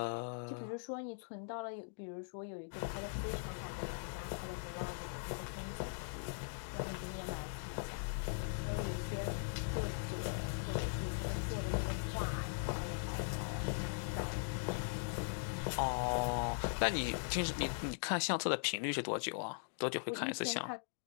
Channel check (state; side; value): silent; right; digital silence